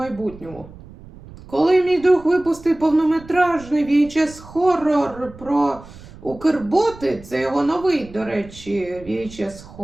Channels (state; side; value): noise; right; rumble, 19 dB below the sound